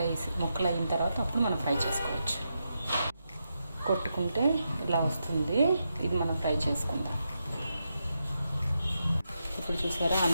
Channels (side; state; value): both; inverted; correlation -0.86